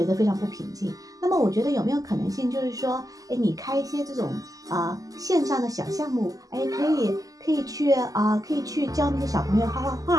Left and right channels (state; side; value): late; left; 0.17 ms